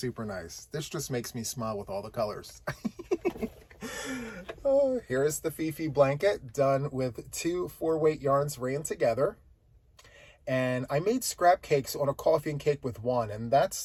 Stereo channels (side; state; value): both; identical; correlation 1.00